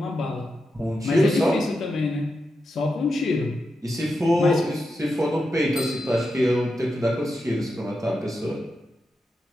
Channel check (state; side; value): normal; both; correlation 0.88